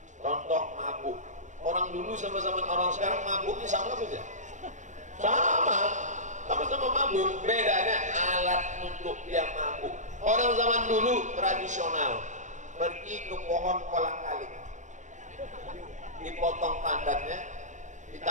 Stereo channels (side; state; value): left; late; 0.35 ms